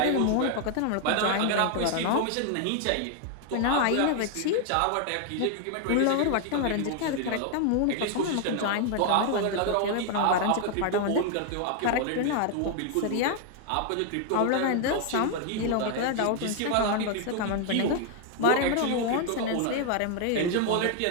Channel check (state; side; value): different; both; correlation 0.00